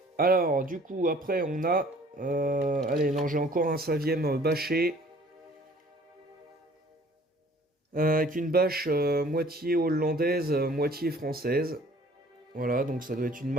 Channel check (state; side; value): normal; both; correlation 0.54